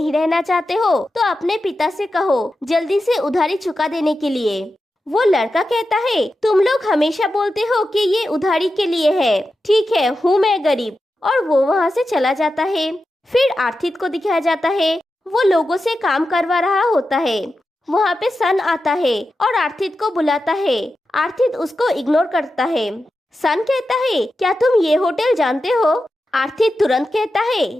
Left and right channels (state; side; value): normal; both; correlation 0.91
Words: रहना चाहते हो तो अपने पिता से कहो जल्दी से उधारी चुका देने के लिए। वो लड़का कहता है तुम लोग हमेशा बोलते हो कि ये उधारी के लिए है, ठीक है हूँ मैं गरीब, और वो वहाँ से चला जाता है। फिर आर्थित को दिखाया जाता है, वो लोगों से काम करवा रहा होता है। वहाँ पे सन आता है और आर्थित को बुलाता है। आर्थित उसको इग्नोर करता है। सन कहता है क्या तुम ये होटल जानते हो। आर्थित तुरंत कहता है